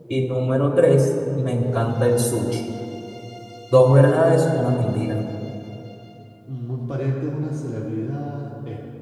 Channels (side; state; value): both; identical; correlation 1.00